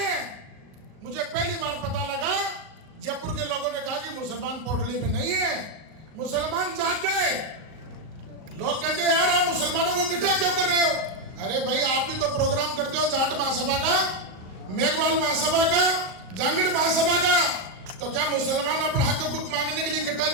मुझे पहली बार पता लगा, जयपुर के लोगों ने कहा कि मुसलमान पोटली में नहीं है, मुसलमान जाग गए। लोग कहते हैं यार आप मुसलमानों को इकट्ठा क्यों कर रहे हो? अरे भाई आप भी तो प्रोग्राम करते हो जाट महासभा का, मेघवाल महासभा का, जांगड़ महासभा का। तो क्या मुसलमान अपना हक हुकूक मांगने के लिए इकट्ठा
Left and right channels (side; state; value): left; late; 38 ms